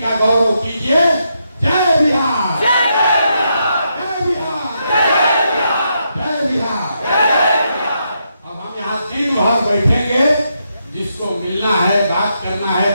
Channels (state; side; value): inverted; both; correlation -0.80